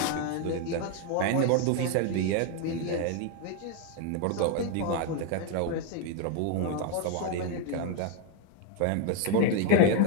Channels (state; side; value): different; both; correlation 0.02